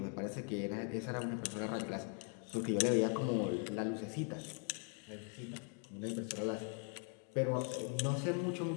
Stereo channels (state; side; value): quieter; right; 39.5 dB